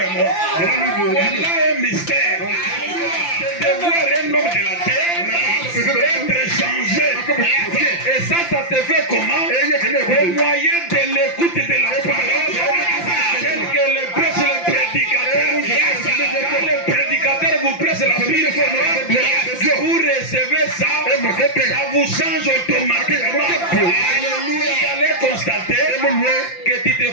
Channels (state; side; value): late; right; 5.8 ms